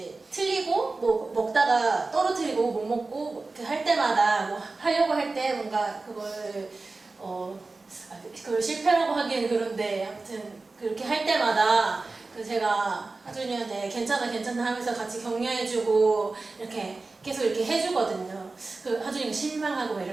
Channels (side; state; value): left; quieter; 3.6 dB